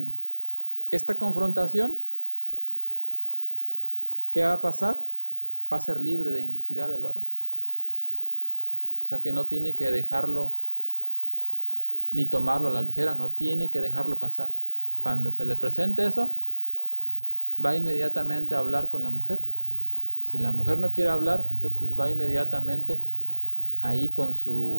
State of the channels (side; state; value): both; inverted; correlation -1.00